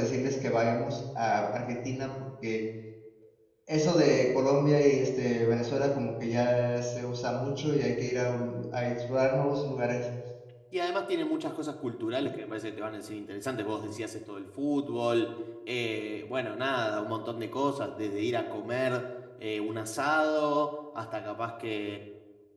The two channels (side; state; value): both; identical; correlation 1.00